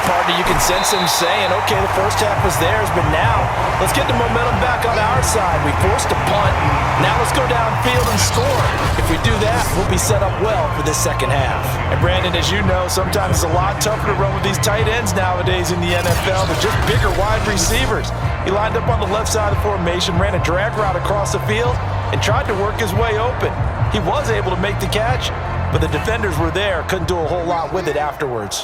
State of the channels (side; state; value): both; identical; correlation 1.00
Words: partner, you can sense them saying, okay, the first half was theirs, but now let's get the momentum back on our side. We forced a punt. Now let's go downfield and score. If we do that, we'll be set up well for this second half. And, Brandon, as you know, sometimes it's a lot tougher to run with these tight ends nowadays in the NFL. They're just bigger wide receivers. He lined up on the left side of the formation, ran a drag route across the field, and tried to work his way open. He was able to make the catch, but the defenders were there, couldn't do a whole lot with it